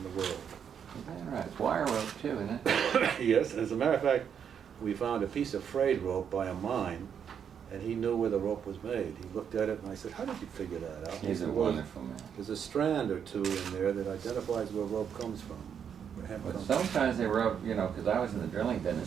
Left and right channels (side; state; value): left; quieter; 7.9 dB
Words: the world. Is that right? It's wire rope too, isn't it? Yes, as a matter of fact, we found a piece of frayed rope by a mine, and he knew where the rope was made. He looked at it and I said, how did you figure that out? He's a wonderful man. There's a strand or two in there that identifies where rope comes from. Where hemp But comes from. sometimes they rope, you know, because I was in the drilling